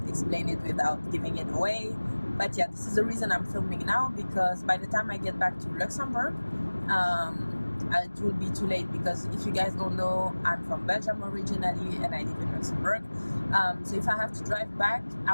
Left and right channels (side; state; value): both; inverted; correlation -1.00